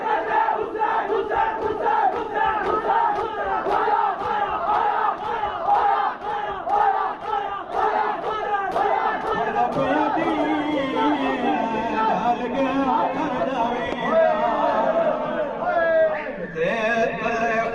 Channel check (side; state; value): both; identical; correlation 1.00